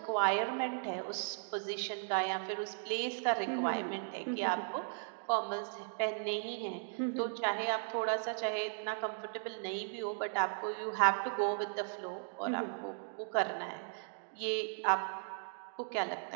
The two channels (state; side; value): silent; left; digital silence